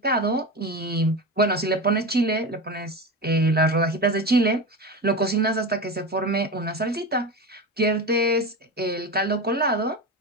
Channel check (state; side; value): normal; both; correlation 0.24